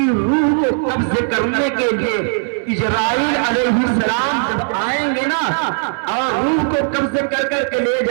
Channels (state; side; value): silent; left; digital silence